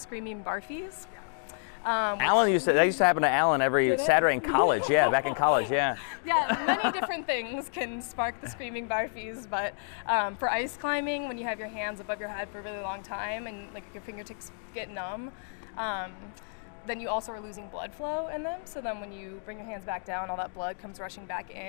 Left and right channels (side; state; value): right; silent; digital silence